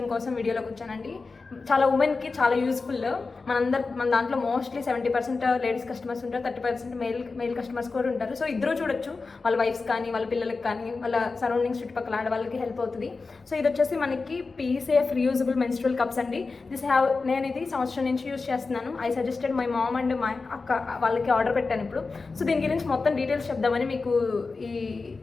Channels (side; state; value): right; quieter; 4.1 dB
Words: కోసం వీడియోలోకి వచ్చానండి. చాలా ఉమెన్కి చాలా యూస్ఫుల్. మన దాంట్లో మోస్ట్లీ 70% లేడీస్ కస్టమర్స్ ఉంటారు, 30% మెయిల్ కస్టమర్స్ కూడా ఉంటారు. సో ఇద్దరు చూడొచ్చు, వాళ్ళ వైఫ్స్ కానీ వాళ్ళ పిల్లలకి కానీ వాళ్ళ సరౌండింగ్స్ చుట్టుపక్కల ఆడవాళ్ళకి హెల్ప్ అవుతుంది. సో ఇది వచ్చేసి మనకి పీసేఫ్ రీయూజబుల్ మెన్స్ట్రువల్ కప్స్ అండి. నేను ఇది సంవత్సరం నుంచి యూజ్ చేస్తున్నాను. I suggested my mom and my అక్క వాళ్ళకి ఆర్డర్ పెట్టాను ఇప్పుడు. సో దీని గురించి మొత్తం డీటెయిల్స్ చెప్దామని మీకు ఈ